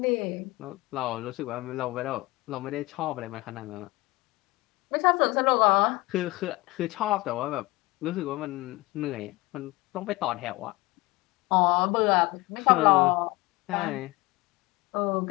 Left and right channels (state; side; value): quieter; right; 21.4 dB